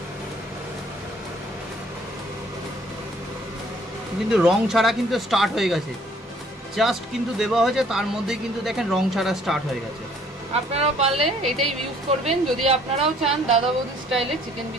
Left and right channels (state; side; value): normal; both; correlation 0.59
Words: কিন্তু রং ছাড়া কিন্তু স্টার্ট হয়ে গেছে, জাস্ট কিন্তু দেওয়া হয়েছে, তার মধ্যেই কিন্তু দেখেন রং ছাড়া স্টার্ট হয়ে গেছে। আপনারাও পারলে এটাই ইউজ করবেন যদি আপনারাও চান দাদা বৌদি স্টাইলে চিকেন